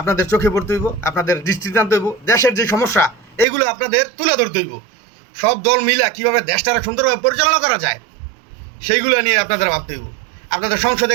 চোখে পড়তে হইব, আপনাদের দৃষ্টিতে আনতে হইব। দেশের যে সমস্যা এইগুলো আপনাদের তুলে ধরতে হইব। সব দল মিলা কীভাবে দেশটারা সুন্দরভাবে পরিচালনা করা যায় সেইগুলো নিয়ে আপনাদের ভাবতে হইব। আপনাদের সংসদে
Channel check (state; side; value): drops out; left; at 3.5 s